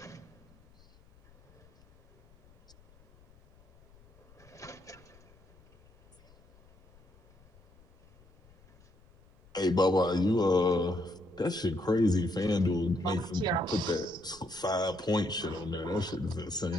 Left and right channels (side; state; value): left; noise; rumble, 28 dB below the sound